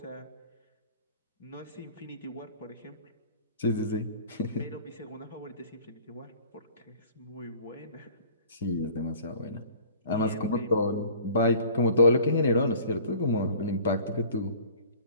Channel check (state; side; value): inverted; both; correlation -0.48